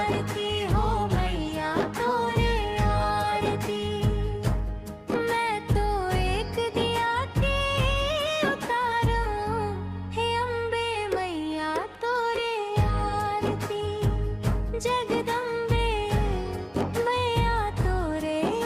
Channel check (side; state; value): both; identical; correlation 1.00